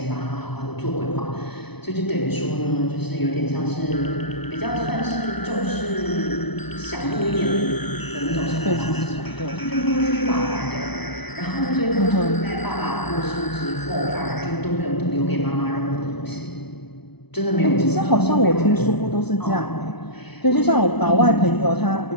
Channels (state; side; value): late; right; 0.99 ms